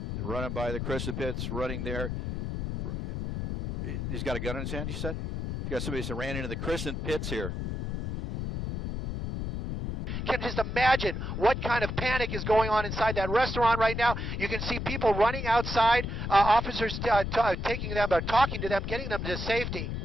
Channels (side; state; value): left; noise; rumble, 4 dB below the sound